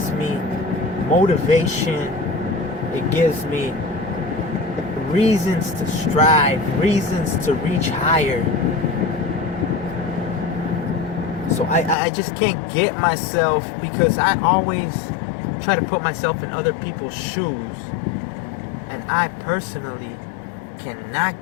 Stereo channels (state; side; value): drops out; right; at 12.0 s